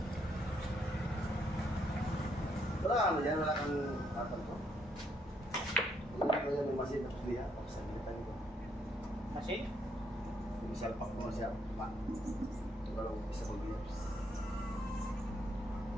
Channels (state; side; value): normal; both; correlation 0.73